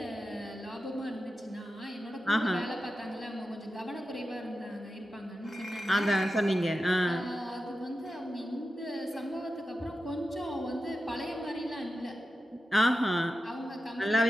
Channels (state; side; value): normal; both; correlation 0.91